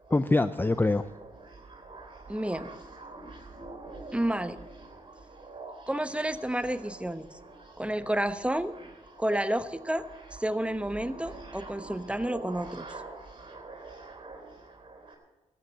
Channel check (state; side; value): normal; both; correlation 0.92